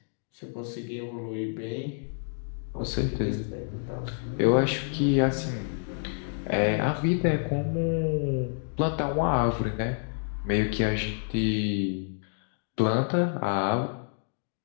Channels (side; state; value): right; silent; digital silence